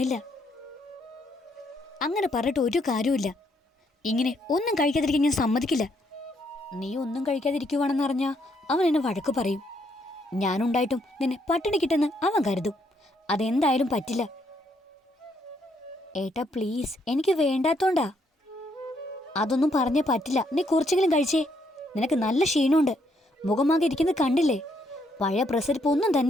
അങ്ങനെ പറഞ്ഞിട്ട് ഒരു കാര്യമില്ല. ഇങ്ങനെ ഒന്നും കഴിക്കാതിരിക്കാൻ ഞാൻ സമ്മതിക്കില്ല. നീ ഒന്നും കഴിക്കാതിരിക്കുവാണെന്നറിഞ്ഞാൽ അവൻ എന്നെ വഴക്ക് പറയും. ഞാനുണ്ടായിട്ടും നിന്നെ പട്ടിണി കിട്ടെന്ന് അവൻ കരുതും. അതെന്തായാലും പറ്റില്ല. ഏട്ടാ പ്ലീസ്, എനിക്ക് വേണ്ടാത്തോണ്ടാ. അതൊന്നും പറഞ്ഞേ പറ്റില്ല. നീ കുറച്ചെങ്കിലും കഴിച്ചേ. നിനക്ക് നല്ല ക്ഷീണമുണ്ട്. മുഖമാകെ ഇരിക്കുന്നത് കണ്ടില്ലേ? പഴയ പ്രസരിപ്പ് ഒന്നും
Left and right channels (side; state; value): both; normal; correlation 0.73